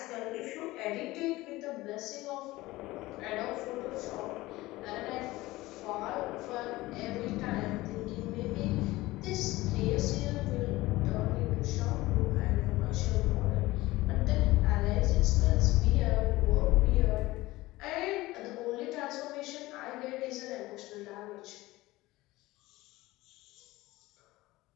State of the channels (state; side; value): quieter; right; 18.9 dB